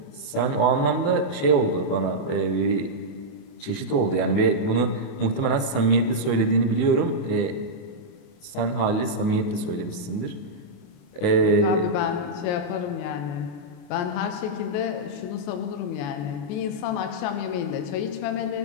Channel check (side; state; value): right; late; 28 ms